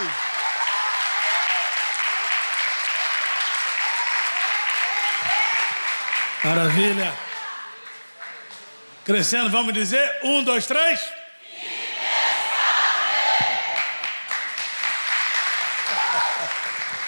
Maravilha. Crescendo, vamos dizer, 1, 2, 3.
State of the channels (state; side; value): inverted; both; correlation -1.00